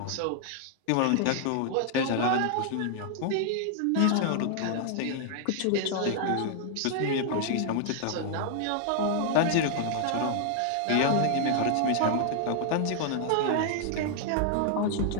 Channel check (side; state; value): both; different; correlation 0.00